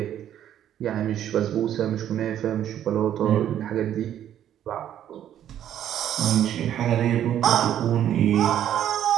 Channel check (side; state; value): left; quieter; 10.8 dB